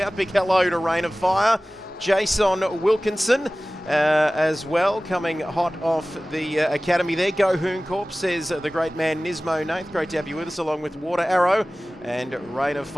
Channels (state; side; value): normal; both; correlation 0.98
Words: Big hello to Rain of Fire, Jason Wilkinson as well, coming hot off the academy there. Go Hoon Corp, says the great man Nismo Nath. Great to have you with us, along with Water Arrow and Rain of